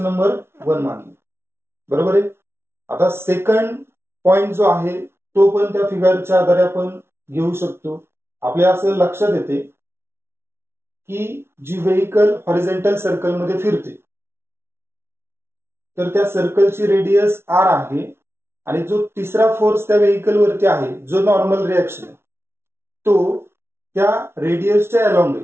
number 1 मानले, बरोबर आहे. आता second point जो आहे तो पण त्या फिगरच्या आधारे आपण घेऊ शकतो. आपल्या असं लक्षात येते की जी व्हेइकल हॉरिझॉन्टल सर्कल मध्ये फिरते तर त्या सर्कलची रेडियस r आहे आणि जो तिसरा फोर्स त्या व्हेइकल वरती आहे जो नॉर्मल रिएक्शन आहे तो त्या रेडियसच्या अलोंग आहे.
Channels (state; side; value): late; left; 0.12 ms